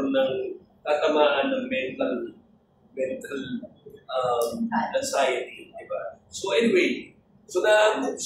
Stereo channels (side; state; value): both; identical; correlation 1.00